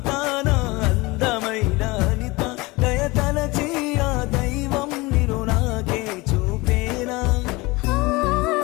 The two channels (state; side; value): quieter; right; 23.1 dB